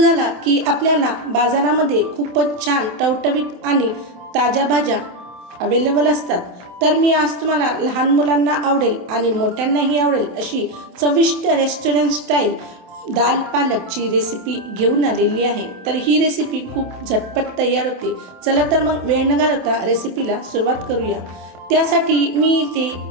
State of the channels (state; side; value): late; left; 28 ms